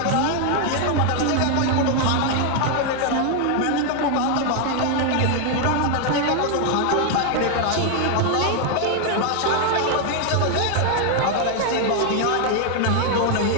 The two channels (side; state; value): both; different; correlation 0.00